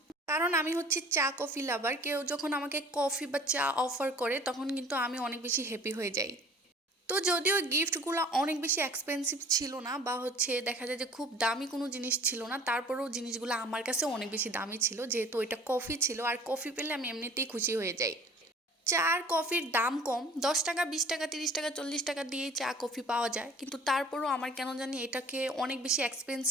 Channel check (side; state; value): both; normal; correlation 0.49